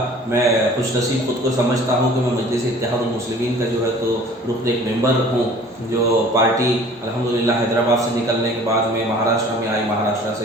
मैं खुशनसीब खुद को समझता हूँ कि मैं मजलिस इत्तेहादुल मुस्लिमीन का जो है तो रुकन एक मेंबर हूँ। जो पार्टी अल्हम्दुलिल्लाह हैदराबाद से निकलने के बाद में महाराष्ट्र में आई, महाराष्ट्र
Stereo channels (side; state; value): both; normal; correlation 0.48